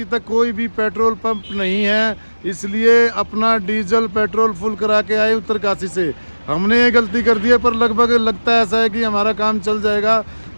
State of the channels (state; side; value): inverted; both; correlation -1.00